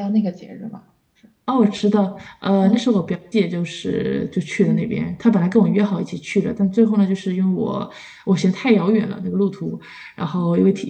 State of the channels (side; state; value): both; identical; correlation 1.00